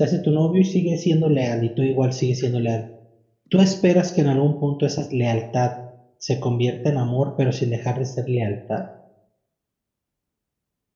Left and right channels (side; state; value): both; identical; correlation 1.00